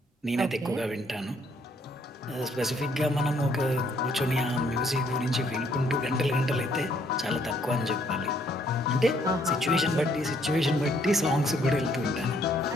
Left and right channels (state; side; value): normal; both; correlation 0.67